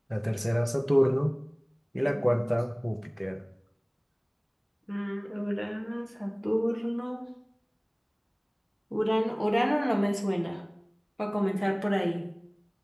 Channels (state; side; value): identical; both; correlation 1.00